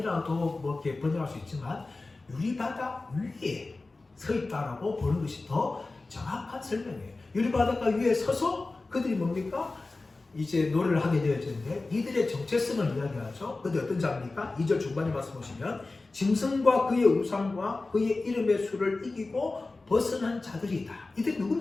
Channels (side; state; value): right; quieter; 3.4 dB